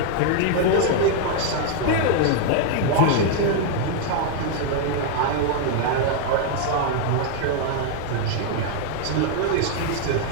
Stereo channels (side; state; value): both; different; correlation 0.00